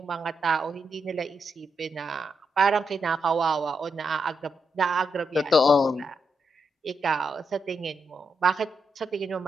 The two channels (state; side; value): normal; both; correlation 0.83